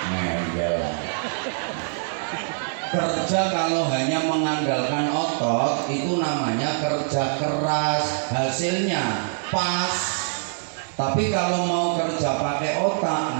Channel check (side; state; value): left; silent; digital silence